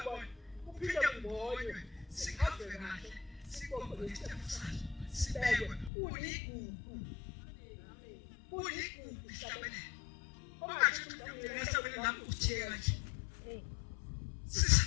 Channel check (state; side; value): drops out; right; at 5.9 s